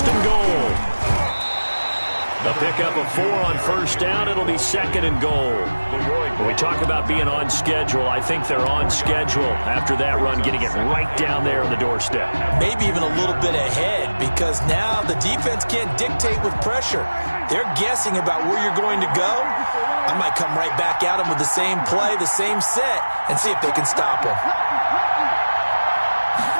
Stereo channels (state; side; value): inverted; both; correlation -1.00